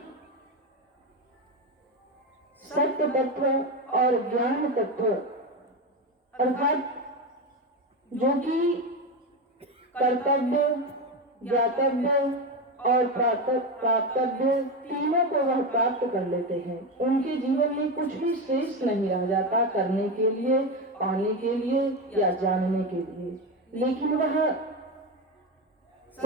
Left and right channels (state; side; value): normal; both; correlation 0.16